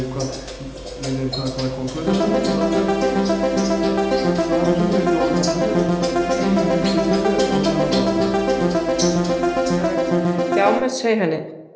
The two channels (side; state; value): both; identical; correlation 1.00